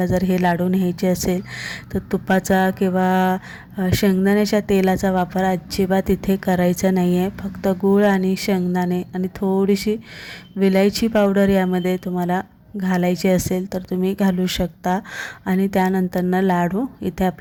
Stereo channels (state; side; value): identical; both; correlation 1.00